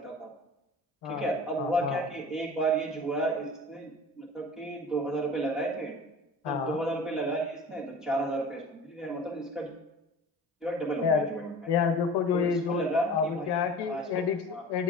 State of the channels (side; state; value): both; normal; correlation 0.40